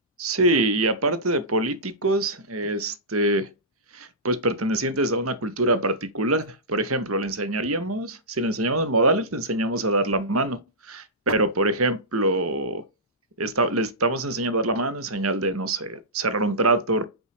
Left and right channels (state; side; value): normal; both; correlation -0.17